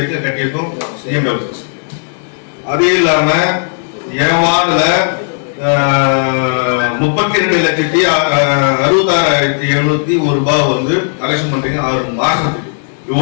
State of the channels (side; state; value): right; silent; digital silence